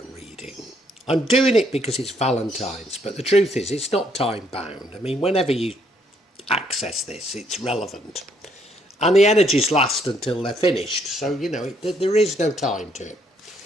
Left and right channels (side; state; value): both; normal; correlation 0.70